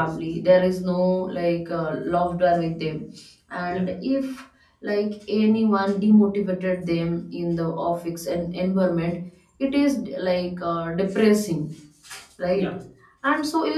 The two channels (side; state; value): both; identical; correlation 1.00